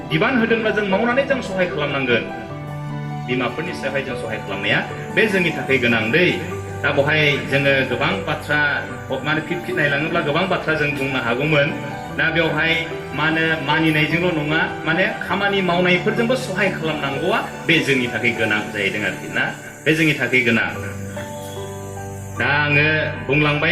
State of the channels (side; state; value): both; identical; correlation 1.00